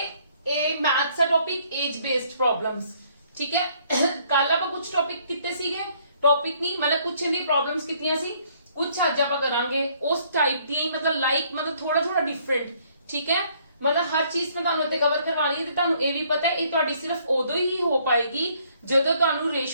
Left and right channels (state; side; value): inverted; both; correlation -0.64